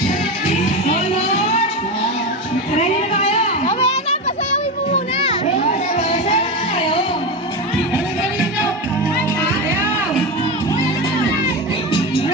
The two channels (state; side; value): normal; both; correlation 0.19